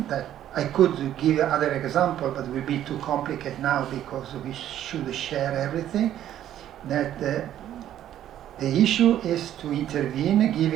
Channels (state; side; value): quieter; left; 11.6 dB